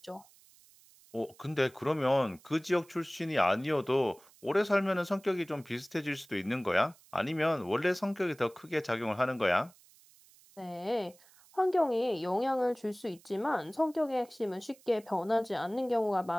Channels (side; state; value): right; noise; hiss, 27 dB below the sound